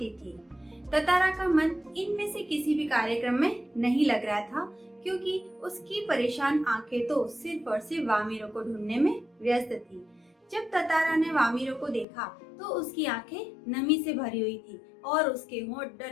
थी। ततारा का मन इनमें से किसी भी कार्यक्रम में नहीं लग रहा था, क्योंकि उसकी परेशान आंखें तो सिर्फ और सिर्फ वामिरो को ढूंढने में व्यस्त थी। जब ततारा ने वामिरो को देखा तो उसकी आंखें नमी से भरी हुई थी और उसके होंठ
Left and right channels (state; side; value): drops out; right; at 12.1 s